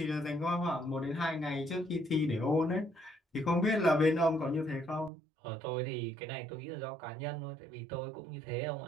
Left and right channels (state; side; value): drops out; left; at 5.1 s